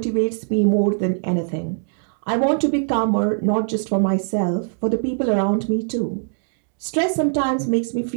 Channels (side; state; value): left; silent; digital silence